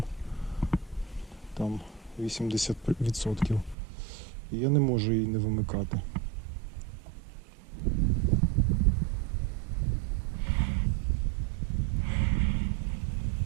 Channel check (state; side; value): drops out; left; at 3.8 s